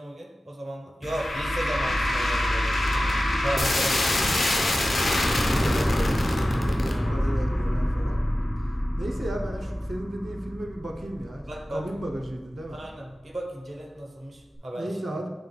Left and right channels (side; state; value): both; normal; correlation 0.95